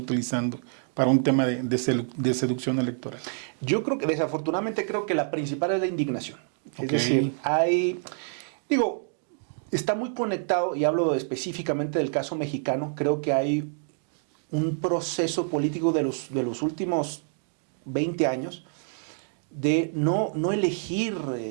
para un tema de seducción electoral? Yo creo que, desafortunadamente, creo que la principal es la indignación. Es Ok. decir, está muy conectado, y hablo específicamente del caso mexicano, creo que hay un proceso político de los últimos 20 años de no elegir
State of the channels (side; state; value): left; silent; 60 dB below the other